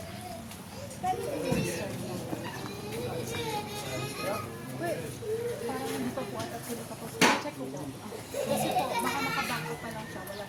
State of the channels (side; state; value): both; identical; correlation 1.00